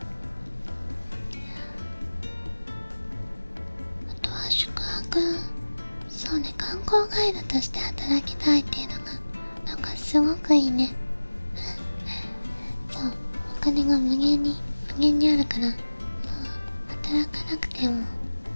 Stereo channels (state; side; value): inverted; both; correlation -1.00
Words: あとは宿泊、そうね、観光ガイドとして働きたいっていうのがなんかすごくいいね。そう、お金が無限にあるから、もう働かなくても